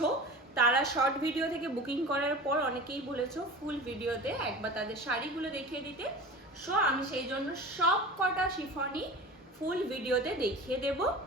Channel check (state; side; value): normal; both; correlation 0.35